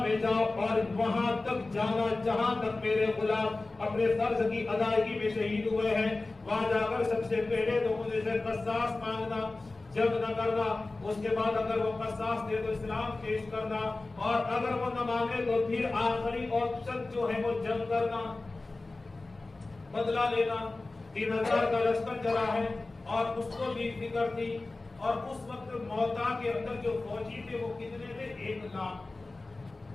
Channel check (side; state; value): right; quieter; 3.2 dB